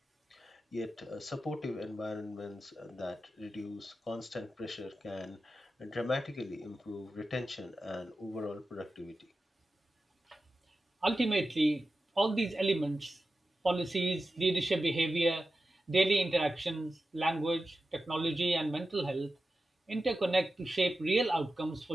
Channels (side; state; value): both; normal; correlation 0.92